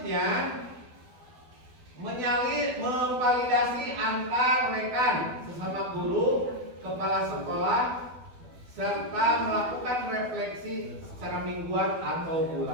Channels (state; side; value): late; left; 12 ms